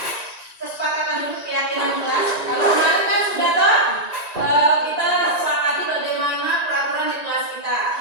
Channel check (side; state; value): right; late; 1.9 ms